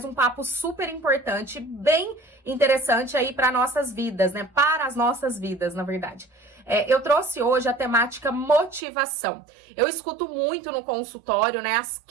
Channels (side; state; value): left; drops out; at 8.8 s